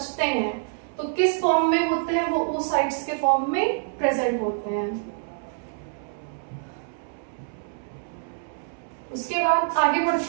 हैं। तो किस फॉर्म में होते हैं? वो oocytes के फॉर्म में प्रेजेंट होते हैं। उसके बाद आगे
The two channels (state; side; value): silent; left; 61 dB below the other